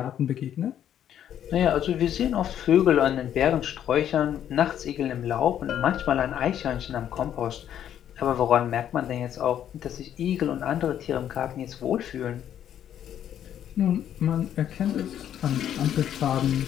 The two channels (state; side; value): quieter; right; 10.2 dB